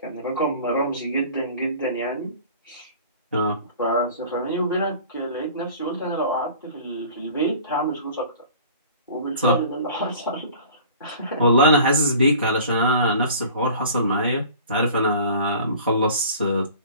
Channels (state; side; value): inverted; both; correlation -0.45